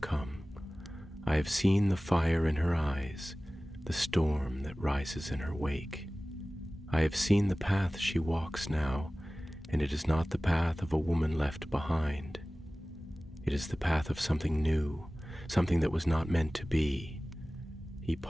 I have seen the fire in her eyes, the storm that rises in her wake. I have seen the path she walks now, and it is not the path of a woman left behind. It is the path of something new, something that was not meant to be." He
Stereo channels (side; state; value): both; normal; correlation 0.98